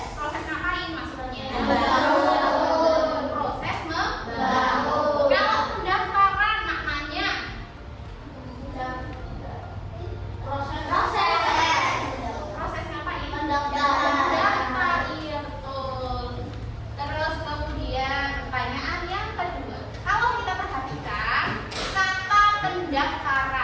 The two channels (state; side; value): identical; both; correlation 1.00